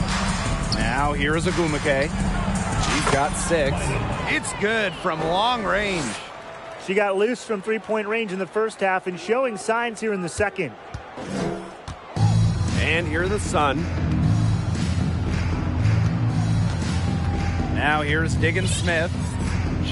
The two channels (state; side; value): identical; both; correlation 1.00